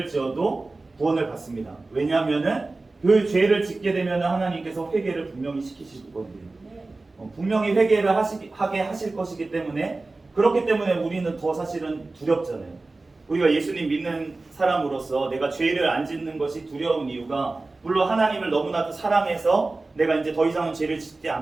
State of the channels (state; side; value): quieter; left; 3.3 dB